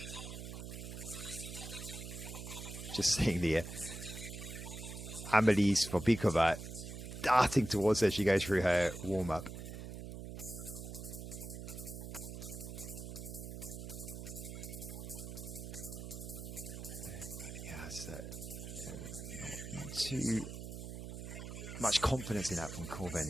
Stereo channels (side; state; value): right; noise; hum, 8 dB below the sound